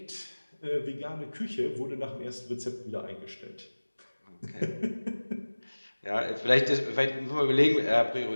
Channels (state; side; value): inverted; both; correlation -1.00